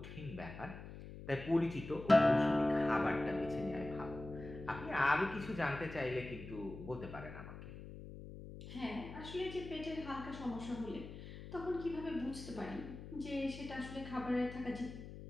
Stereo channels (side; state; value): left; noise; hum, 12 dB below the sound